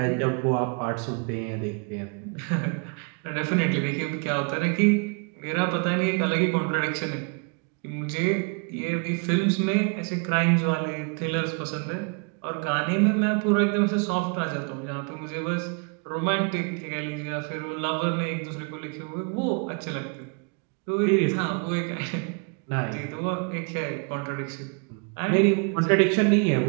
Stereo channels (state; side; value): quieter; left; 37.0 dB